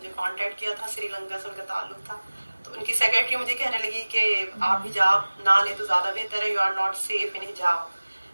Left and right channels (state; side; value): inverted; both; correlation -1.00